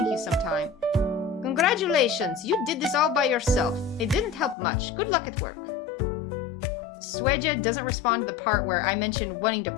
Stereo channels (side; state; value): right; drops out; at 4.5 s